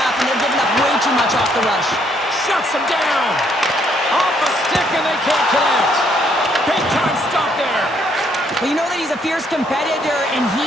and they're giving up way too much off the rush. Shuts them down. Off a stick, and they can't connect. Big time stop there. Well, you know that he's a fierce competitor, and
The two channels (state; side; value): normal; both; correlation 0.69